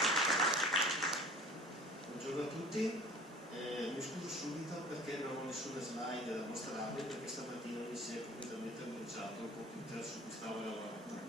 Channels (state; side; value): normal; both; correlation 0.44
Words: Buongiorno a tutti, mi scuso subito perché non ho nessuna slide da mostrarvi, perché stamattina mi si è completamente bruciato il computer su cui stavo lavorando.